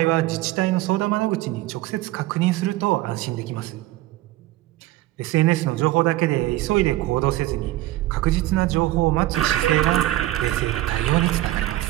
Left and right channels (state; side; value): quieter; left; 16.2 dB